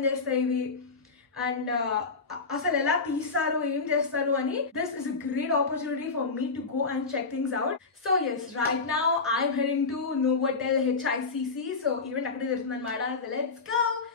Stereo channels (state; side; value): quieter; right; 4.4 dB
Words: ఇవి అండ్ అసలు ఎలా తీస్తారు ఏం చేస్తారు అని. This is a great opportunity for me to go and check things out. So yes right now I'm heading to Novotel HICC. So event అక్కడే జరుగుతుంది అనమాట. Let's go.